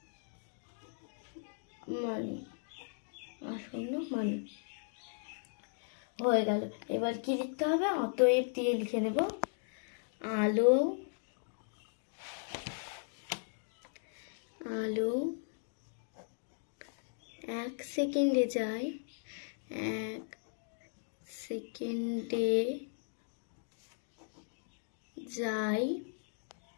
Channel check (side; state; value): right; silent; digital silence